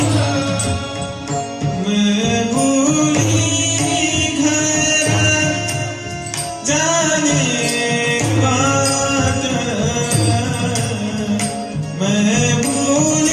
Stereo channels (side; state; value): both; identical; correlation 1.00